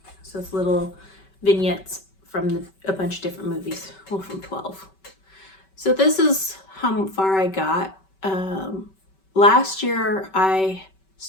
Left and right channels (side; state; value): right; late; 5.2 ms